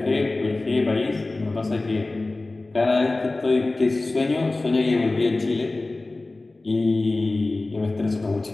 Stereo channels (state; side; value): quieter; right; 3.1 dB